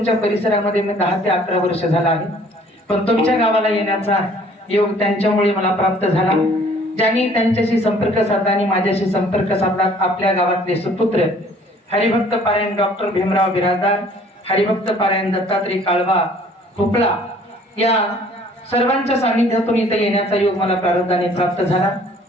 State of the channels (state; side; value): normal; both; correlation 0.56